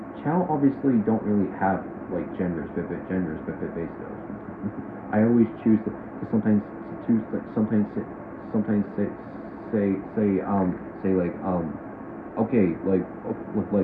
Chao obviously don't really have like genders, but basically, I always choose to sometimes say like okay, like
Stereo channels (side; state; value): both; identical; correlation 1.00